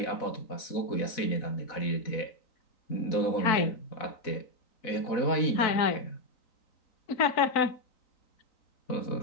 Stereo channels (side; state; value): right; late; 3.9 ms